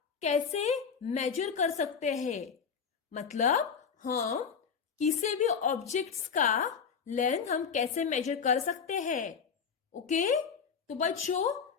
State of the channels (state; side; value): quieter; right; 6.4 dB